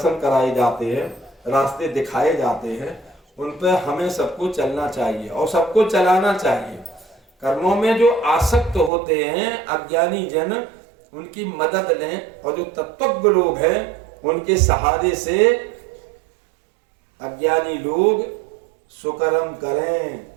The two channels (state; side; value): drops out; left; at 8.9 s